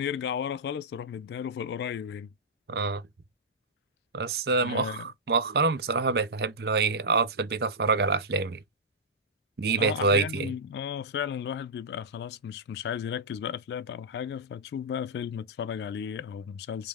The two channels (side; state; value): both; normal; correlation -0.13